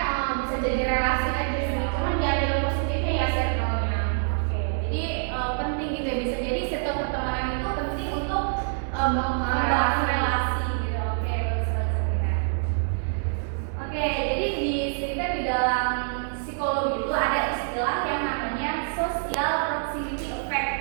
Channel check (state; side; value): silent; left; digital silence